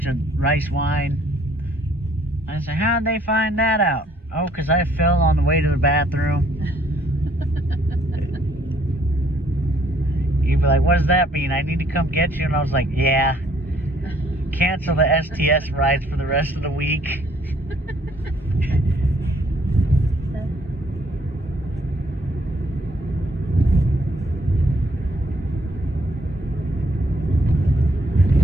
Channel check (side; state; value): both; normal; correlation 0.64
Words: of rice wine. I said, how'd they find that out? Oh, because I fell on the way to the bathroom. You'd be like, what does that mean? I need to come get you? And I was like, yeah. Cancel the STS rides for the rest of the week.